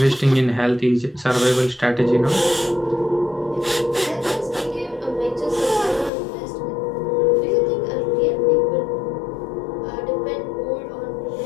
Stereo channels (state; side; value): drops out; right; at 6.1 s